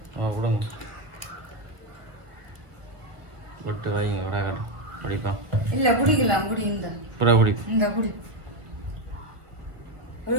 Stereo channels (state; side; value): late; left; 1.7 ms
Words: கொடுங்க. விட்டு வைங்க விடாக்கட குடிப்போம். இல்ல குடிக்கலாம், குடி. புறா குடி. இந்த குடி. ஒரு